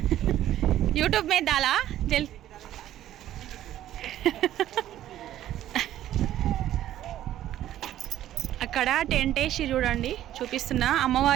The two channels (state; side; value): quieter; left; 12.6 dB